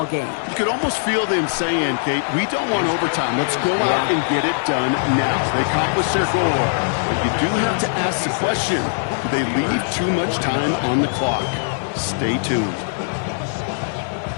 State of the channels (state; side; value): silent; right; digital silence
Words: game. You could almost feel them saying, Kate, we don't want overtime. Let's go out and get it done now. They accomplished their goal. But you do have to ask the question, do they leave too much time on the clock? Stay tuned.